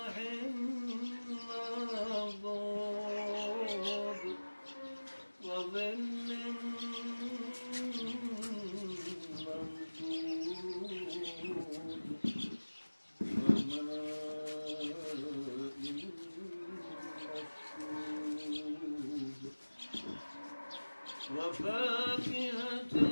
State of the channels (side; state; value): both; inverted; correlation -1.00